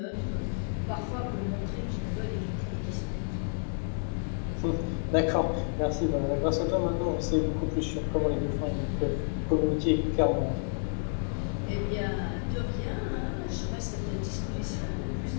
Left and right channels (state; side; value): silent; right; digital silence